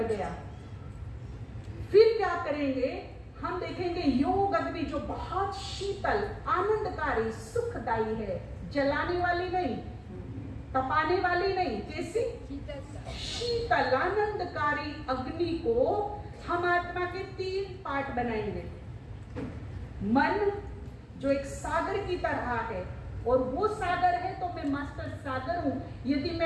गया। फिर क्या करेंगे? हम देखेंगे योग अग्नि जो बहुत शीतल, आनंदकारी, सुखदायी है, जलाने वाली नहीं, तपाने वाली नहीं, कैसी? शीतल आनंदकारी अग्नि को हम आत्मा के 3 पार्ट बनाएंगे। मन जो एक सागर की तरह है, और वो सागर है तो मैं मास्टर सागर हूं। यदि मैं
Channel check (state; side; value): identical; both; correlation 1.00